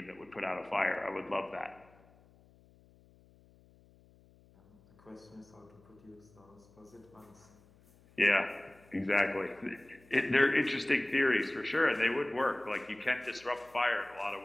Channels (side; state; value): left; noise; hum, 28 dB below the sound